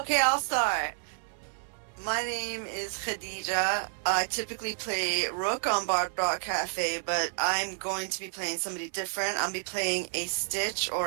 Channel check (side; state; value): left; silent; 58 dB below the other